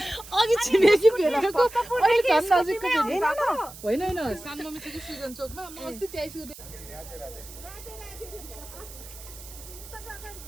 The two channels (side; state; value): right; noise; hiss, 16 dB below the sound